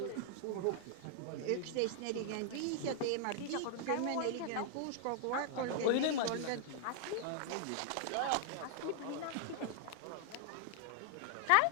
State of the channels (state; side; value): different; both; correlation 0.00